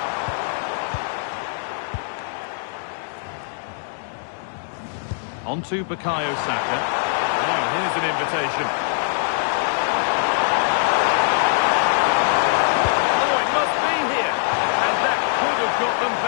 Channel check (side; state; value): right; silent; digital silence